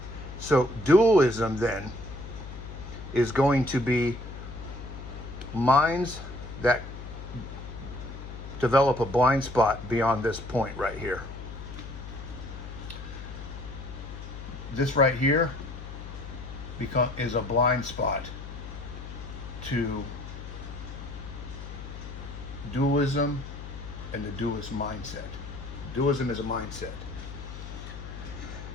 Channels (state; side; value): noise; left; hum, 10 dB below the sound